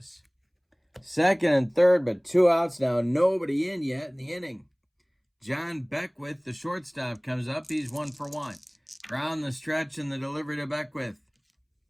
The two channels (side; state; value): both; identical; correlation 1.00